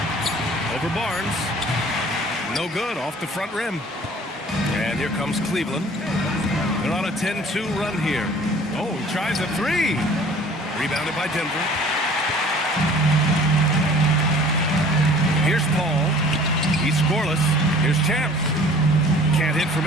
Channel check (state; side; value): normal; both; correlation 0.50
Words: Over Barnes. No good, off the front rim. And here comes Cleveland. They're on a 10-2 run here. Oh, he tries a 3. Rebounded by Denver. Here's Paul. He's scoreless. Here's Champ. Can't hit from